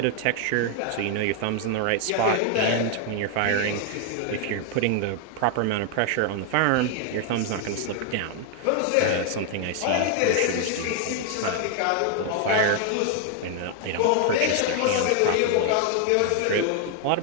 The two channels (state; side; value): different; both; correlation 0.00